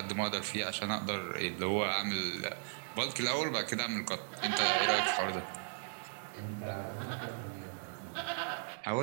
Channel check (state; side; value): silent; left; digital silence